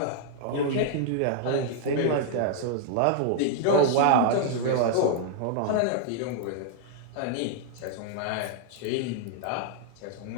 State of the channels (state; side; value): different; both; correlation -0.01